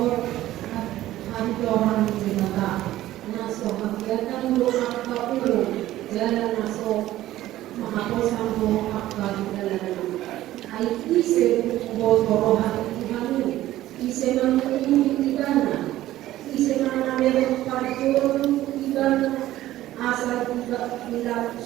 at hantohan debata naso hagyatan mo ang kaulo dala naso makaposan mo ang kagdala ay ise botorohan ihanu ise manungin ibana ise manamero pagturun ibana asal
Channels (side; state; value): left; quieter; 14.7 dB